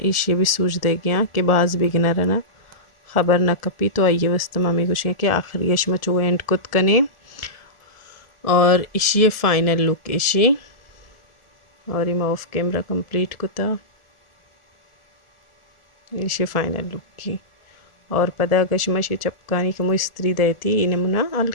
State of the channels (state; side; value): late; right; 1.4 ms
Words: इशे भी सूझ दे गया कि बाज बिगना रहना खबर ना कपी तो आइए वस्ता मामी कुछ कि आखिरी यशमा चो एंड कुत कने और इशी फाइनल लुक इशी और इमा ऑफ कैमरा कंप्लीट कुता इशी फाइनल लुक की और पदा गशमशी चपकानी का मुझ स्त्री देती इन्हें मुना